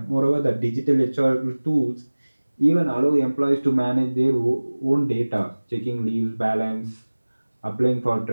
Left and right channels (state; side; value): inverted; both; correlation -1.00